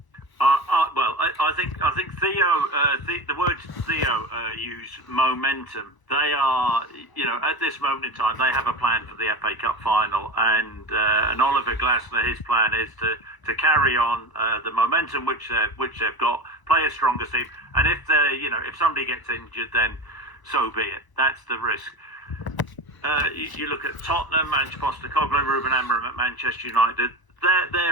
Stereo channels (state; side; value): late; right; 1.0 ms